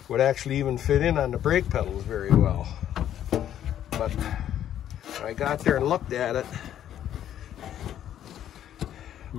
would actually even fit in on the brake pedals very well. But I got there and looked at it.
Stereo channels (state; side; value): quieter; right; 10.9 dB